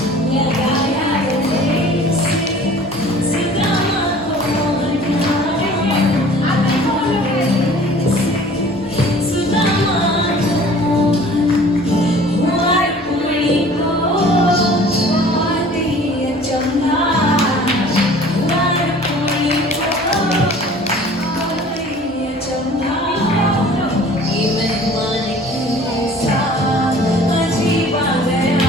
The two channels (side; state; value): both; normal; correlation 0.48